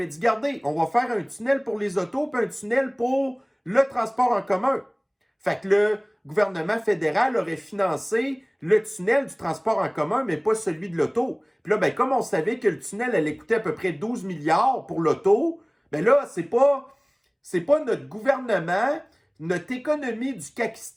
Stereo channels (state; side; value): identical; both; correlation 1.00